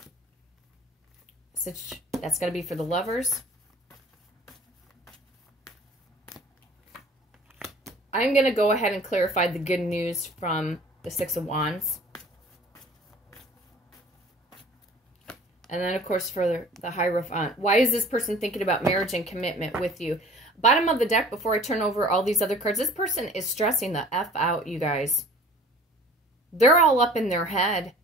That's going to be for the lovers. I'm going to go ahead and clarify the good news from the Six of Wands. And then, of course, for the Hierophant. Why is this person thinking about marriage and commitment with you? Bottom of the deck, before I turn over all these other cards, this person is stressing the F out, you guys. They're all up in their head.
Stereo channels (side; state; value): both; normal; correlation 0.47